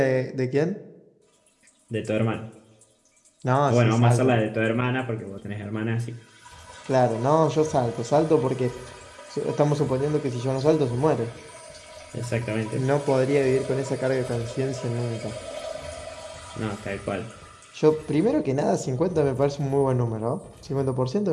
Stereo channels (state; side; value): identical; both; correlation 1.00